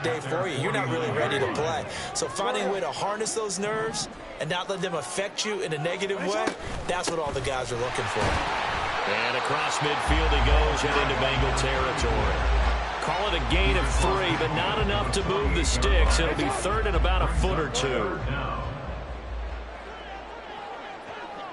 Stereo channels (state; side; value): identical; both; correlation 1.00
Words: day for you. You're not really ready to play. So finding a way to harness those nerves and not let them affect you in a negative way, that's what all the guys are looking for. And across midfield he goes and into Bengal territory. Call it a gain of 3, but not enough to move the sticks. It'll be third and about a foot or two.